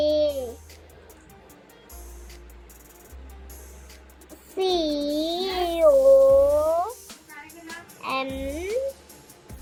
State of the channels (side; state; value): both; identical; correlation 1.00